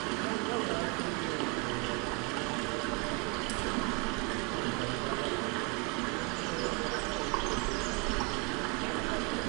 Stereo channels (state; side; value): quieter; left; 26.6 dB